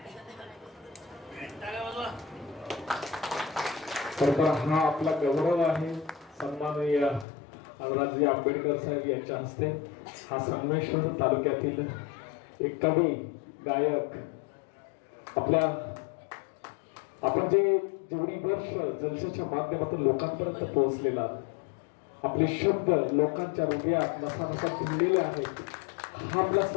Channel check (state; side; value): drops out; right; at 7.2 s